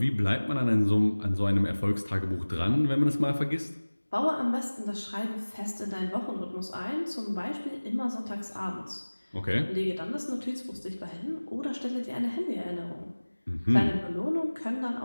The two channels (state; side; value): inverted; both; correlation -1.00